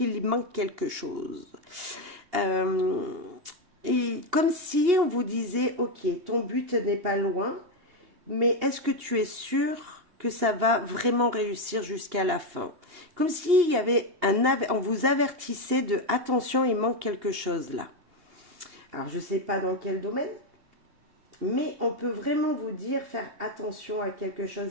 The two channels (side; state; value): left; late; 2.8 ms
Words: manque quelque chose. Et comme si on vous disait, ok, ton but n'est pas loin, mais est-ce que tu es sûr que ça va vraiment réussir jusqu'à la fin? Comme s'il y avait on vous avertissait de attention, il manque quelque chose là. Alors je ne sais pas dans quel domaine, mais on peut vraiment vous dire faire attention à quelque chose.